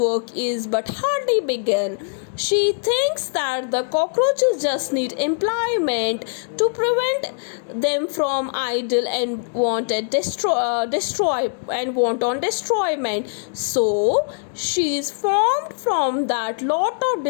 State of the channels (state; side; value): silent; right; digital silence